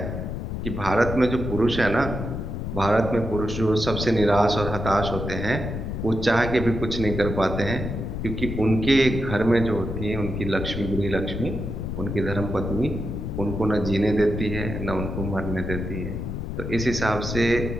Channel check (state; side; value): noise; left; rumble, 5 dB below the sound